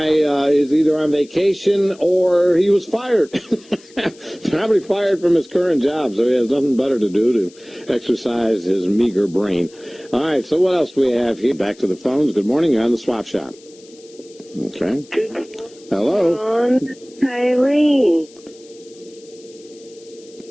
is either on vacation or he was fired. Probably fired from his current job, so he has nothing better to do to exercise his meager brain. All right. So what else do we have here? Back to the phones. Good morning. You're on the Swap Shop. Okay. Hello. Ron, Eileen.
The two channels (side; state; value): left; noise; hiss, 25 dB below the sound